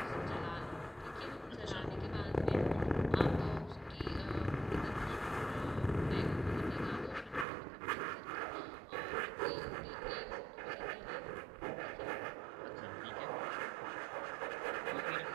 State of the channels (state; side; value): drops out; left; at 7.5 s